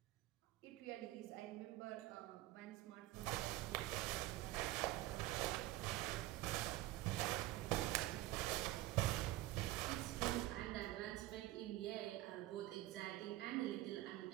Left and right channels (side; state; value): left; quieter; 17.0 dB